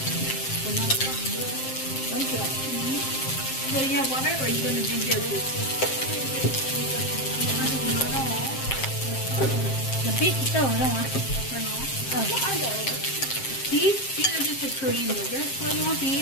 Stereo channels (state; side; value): late; right; 7.6 ms